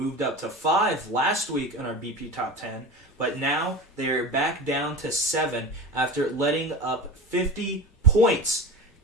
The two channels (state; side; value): normal; both; correlation 0.30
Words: up to 5 last week in our BP Top 10. But now they are back down to 7 after letting up 50 points